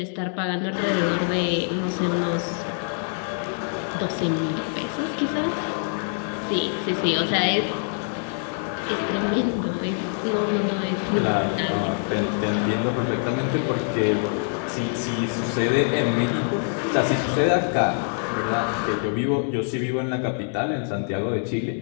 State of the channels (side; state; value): right; silent; 59 dB below the other